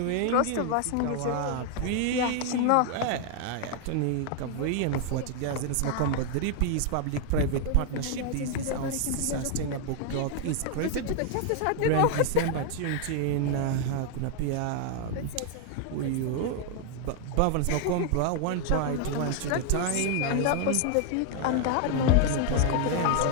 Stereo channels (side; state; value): both; different; correlation 0.00